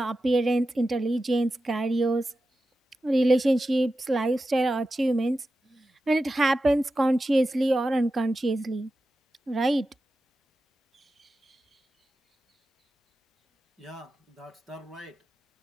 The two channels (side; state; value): both; normal; correlation 0.92